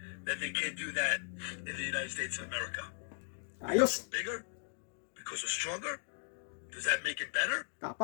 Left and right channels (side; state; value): right; silent; digital silence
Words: that they can't do that in the United States of America? Ayos! Bigger? Because we're stronger? Does that make it better?